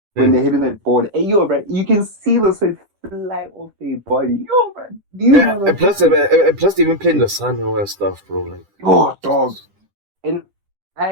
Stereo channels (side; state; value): left; late; 10 ms